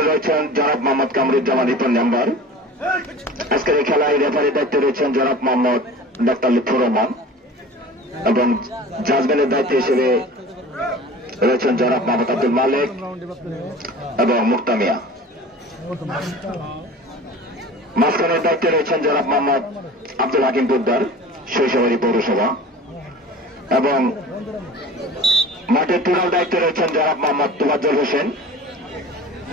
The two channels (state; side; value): normal; both; correlation 0.39